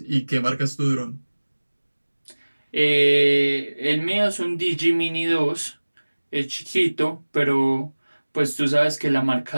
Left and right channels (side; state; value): both; inverted; correlation -1.00